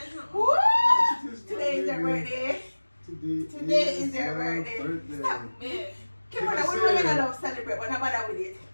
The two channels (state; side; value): inverted; both; correlation -1.00